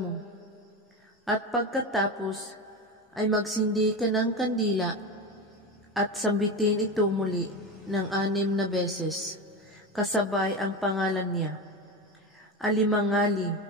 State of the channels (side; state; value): both; normal; correlation 0.22